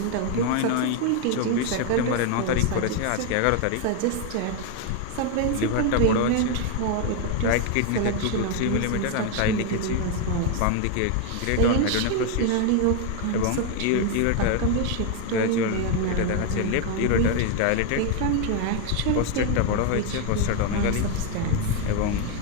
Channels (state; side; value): different; both; correlation 0.01